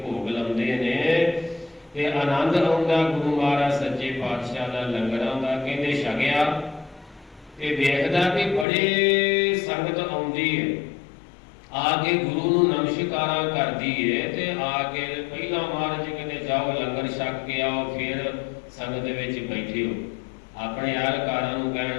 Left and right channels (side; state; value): right; drops out; at 8.7 s